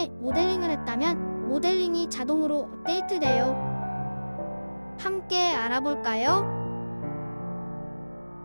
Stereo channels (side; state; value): both; inverted; correlation -1.00